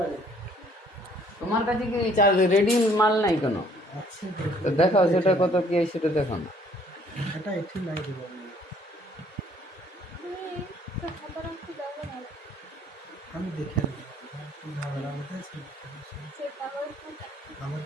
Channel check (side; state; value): both; normal; correlation 0.60